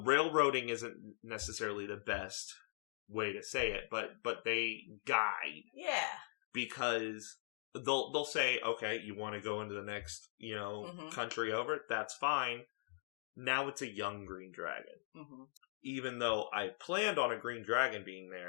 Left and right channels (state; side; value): silent; right; digital silence